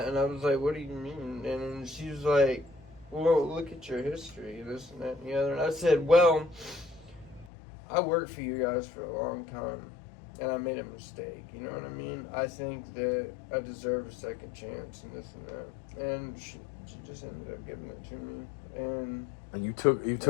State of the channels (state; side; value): drops out; right; at 7.5 s